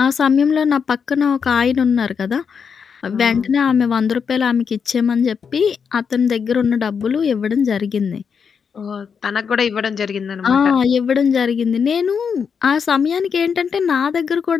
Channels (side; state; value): right; quieter; 6.4 dB